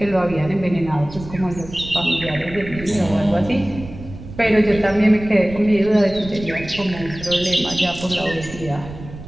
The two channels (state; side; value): noise; right; rumble, 14 dB below the sound